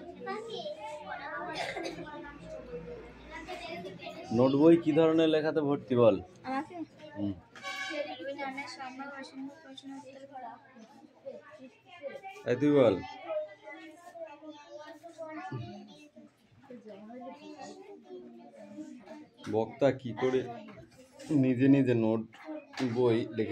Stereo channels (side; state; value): both; identical; correlation 1.00